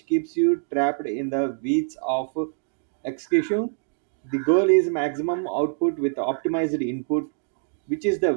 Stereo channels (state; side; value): silent; left; digital silence